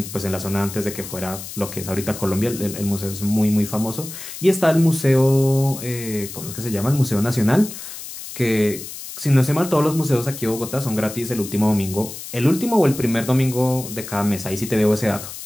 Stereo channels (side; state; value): left; noise; hiss, 11 dB below the sound